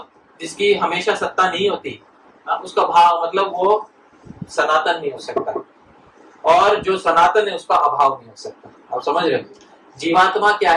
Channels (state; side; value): identical; both; correlation 1.00